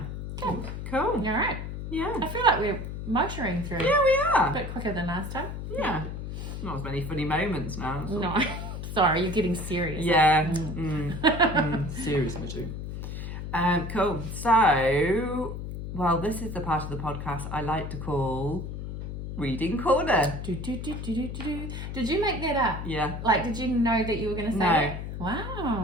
Cool. Cool. All right. Yeah. I feel like we're motoring through. Yeah, we are. A bit quicker than last time. Yeah. Not as many funny moments now. So. No. Sorry, you're getting serious. Yeah. Serious, Mitchie. Cool. So, well, this is the part of the podcast I like to call Reading Corner. Did you make that up? Yeah. Like, did you know that you were going to say No. that?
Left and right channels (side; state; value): left; noise; hum, 7 dB below the sound